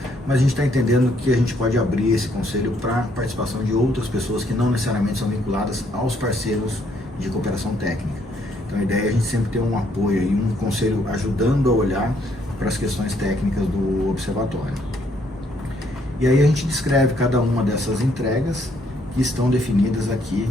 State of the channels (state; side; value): normal; both; correlation 0.69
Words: mas a gente está entendendo que a gente pode abrir esse conselho para a participação de outras pessoas que não necessariamente são vinculadas aos parceiros de cooperação técnica. Então a ideia é a gente sempre ter um apoio e um conselho ajudando a olhar para as questões técnicas do observatório. E aí a gente descreve cada uma dessas entregas que estão definidas aqui